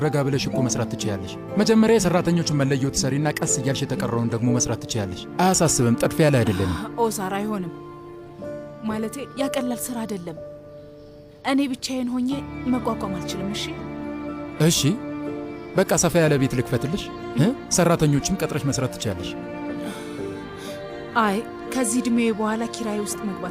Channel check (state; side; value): identical; both; correlation 1.00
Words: ረጋ ብለሽ እኮ መስራት ትችያለሽ። መጀመሪያ የሰራተኞቹን መለየው ትሰሪና ቀስ እያልሽ የተቀረውን ደግሞ መስራት ትችያለሽ። አያሳስብም። ጠድፊያ ላይ አይደለንም። ኦዛር። አይሆንም። ማለቴ ያቀላል ስራ አይደለም። እኔ ብቻዬን ሆኜ መቋቋም አልችልም። እሺ እሺ፣ በቃ ሰፋ ያለ ቤት ልክፈትልሽ፣ ሰራተኞችም ቀጥረሽ መስራት ትችያለሽ። አይ ከዚህ እድሜ በኋላ ኪራይ ውስጥ